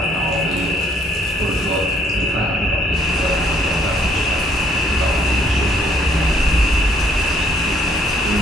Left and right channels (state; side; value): normal; both; correlation 0.65